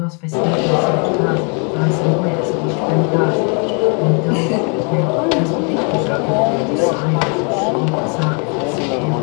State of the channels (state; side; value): quieter; right; 37.4 dB